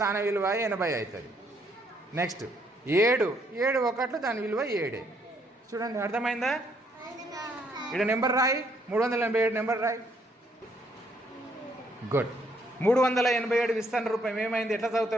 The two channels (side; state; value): both; normal; correlation 0.70